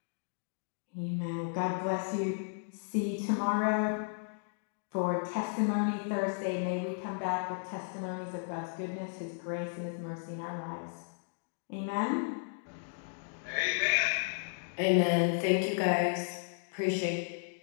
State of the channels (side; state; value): right; silent; digital silence